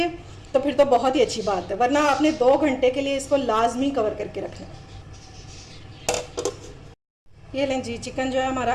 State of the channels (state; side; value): identical; both; correlation 1.00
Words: तो फिर तो बहुत ही अच्छी बात है, वरना आपने 2 घंटे के लिए इसको लाजमी कवर करके रखना है। ये लें जी, चिकन जो है हमारा